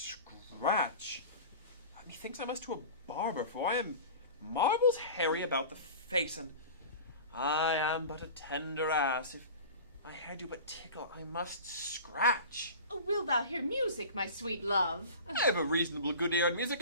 Methinks I must to a barber, for I am marbles hairy about the face, and I am but a tender ass. If my hair do but tickle, I must scratch. Oh, will thou hear music, my sweet love? I have a reasonable good ear in music.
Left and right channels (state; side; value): inverted; both; correlation -0.36